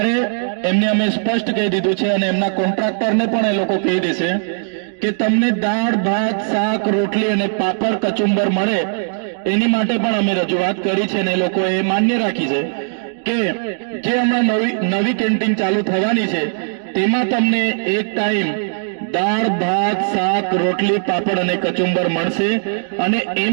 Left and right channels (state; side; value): silent; left; digital silence